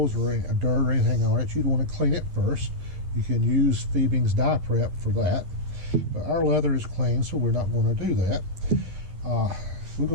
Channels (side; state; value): left; late; 11 ms